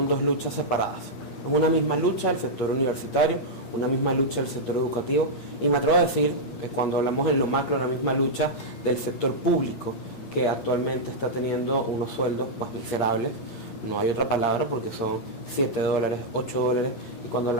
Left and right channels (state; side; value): late; right; 8.4 ms